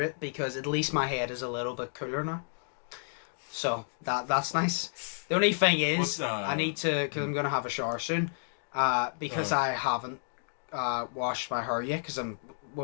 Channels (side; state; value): right; silent; digital silence